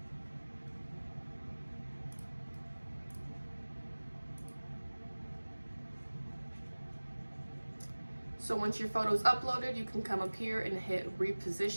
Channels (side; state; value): both; inverted; correlation -1.00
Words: So once your photo is uploaded, you can come up here and hit